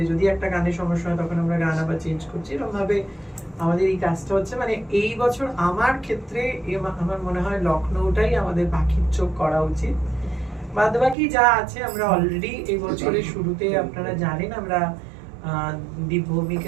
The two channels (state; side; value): drops out; left; at 11.2 s